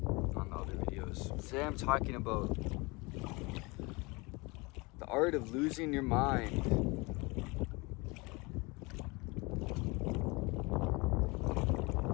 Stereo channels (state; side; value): quieter; right; 26.1 dB